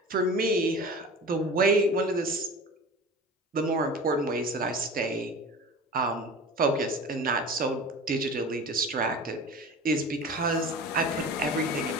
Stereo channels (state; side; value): normal; both; correlation 0.36